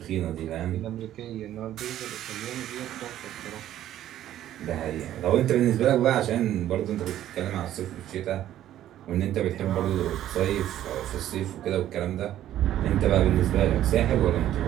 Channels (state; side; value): quieter; left; 12.3 dB